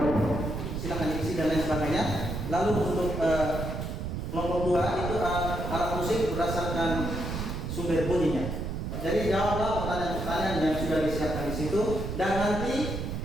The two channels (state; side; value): noise; right; rumble, 4 dB below the sound